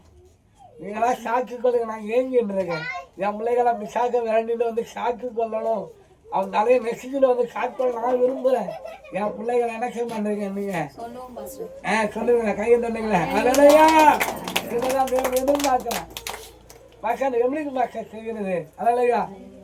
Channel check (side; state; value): both; identical; correlation 1.00